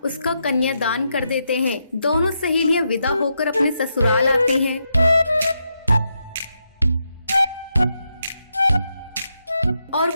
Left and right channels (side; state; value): both; inverted; correlation -0.83